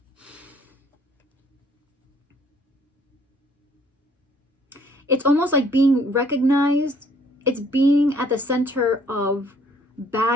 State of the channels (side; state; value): both; normal; correlation 0.61